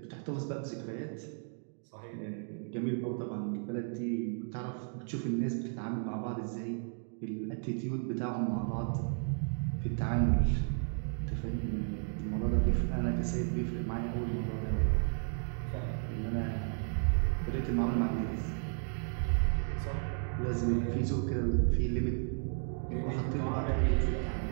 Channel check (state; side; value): silent; left; 55 dB below the other